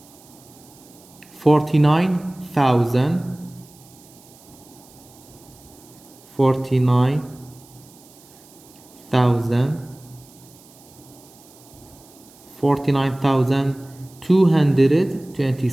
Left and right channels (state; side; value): noise; right; hiss, 25 dB below the sound